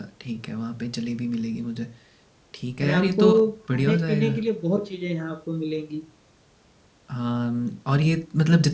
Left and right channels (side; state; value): both; identical; correlation 1.00